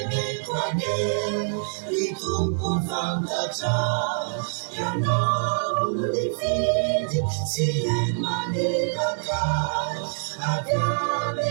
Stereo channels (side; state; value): left; silent; 62 dB below the other